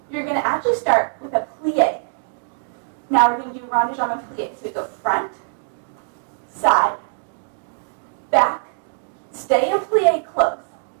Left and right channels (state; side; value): silent; left; digital silence